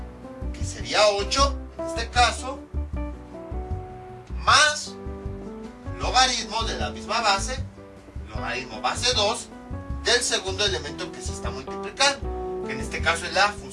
que sería 8 en este caso, más logaritmo de la misma base, logaritmo base 2 del segundo elemento que se está multiplicando, que en este caso es la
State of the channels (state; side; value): identical; both; correlation 1.00